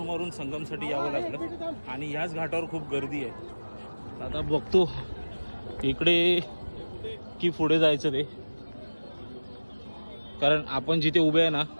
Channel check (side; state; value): both; inverted; correlation -1.00